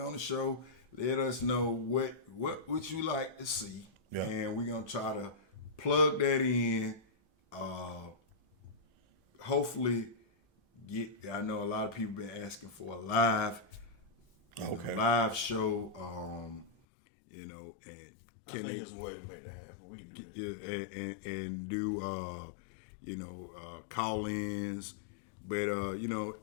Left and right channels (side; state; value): right; drops out; at 16.7 s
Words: on the show? Let us know what you like to see, and we're gonna try to plug that in. Hopefully, I know a lot of people been asking for a live show. And I think it's a way to make that happen. We can do that. Yeah. And do call-ins. But